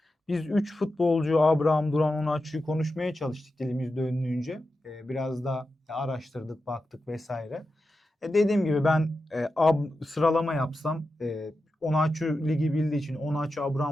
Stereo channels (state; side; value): normal; both; correlation 0.91